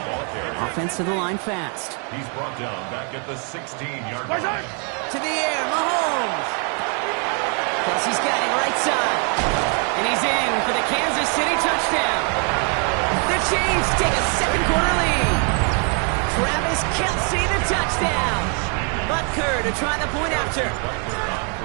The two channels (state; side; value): quieter; left; 38.9 dB